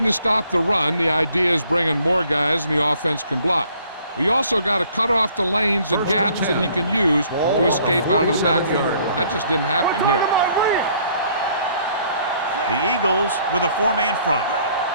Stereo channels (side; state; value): both; inverted; correlation -0.61